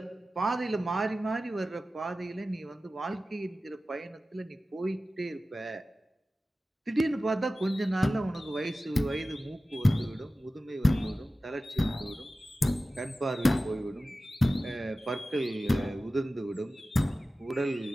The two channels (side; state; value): both; normal; correlation 0.95